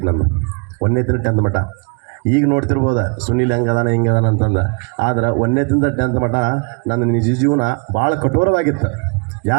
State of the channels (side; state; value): left; quieter; 36.1 dB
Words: ನಂದು. 1ನೇದರಿಂದ 10th ಮಟ್ಟ. ಈಗ ನೋಡ್ತಿರ್ಬೋದ ಸುನೀಲ್ ಹೆಂಗದಾನ ಹಿಂಗದಾನ ಅಂತಂದು. ಆದ್ರೆ 1ನೇದರಿಂದ 10th ಮಟ್ಟ ನನ್ನ ನಿಜ ಜೀವನ ಭಾಳ ಕಠೋರವಾಗಿತ್ತು.